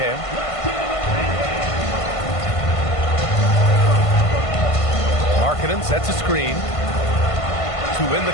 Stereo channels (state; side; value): late; right; 1.5 ms